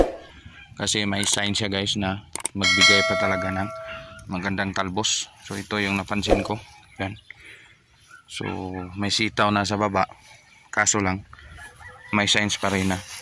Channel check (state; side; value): identical; both; correlation 1.00